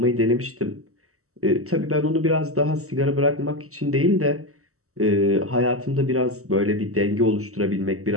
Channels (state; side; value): late; left; 0.64 ms